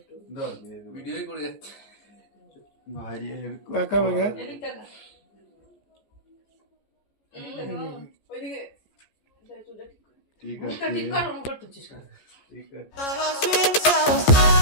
দাও দিয়ে দেবো ভিডিওই করে যাচ্ছে। ভাই কাকা ভাগা। এদিক টাকা এদিক টাকা ওইদিকে চুলটা ঠিক করে ঠিক মুখটা আছে ঠিক কর, ওরম করতেছিস কেন? ঠিক আছে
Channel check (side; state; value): right; late; 14 ms